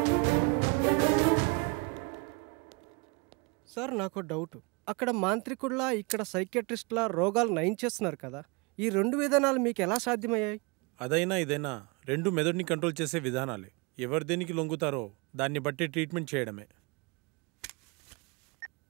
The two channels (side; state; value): left; quieter; 29.1 dB